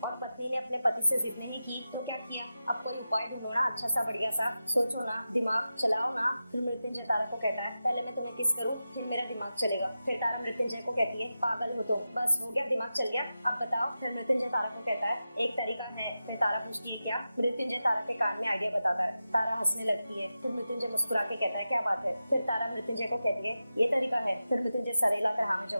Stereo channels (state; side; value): inverted; both; correlation -0.92